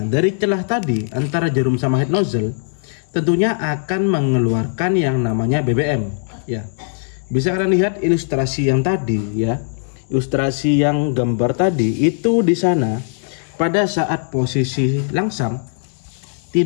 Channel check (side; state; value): right; silent; digital silence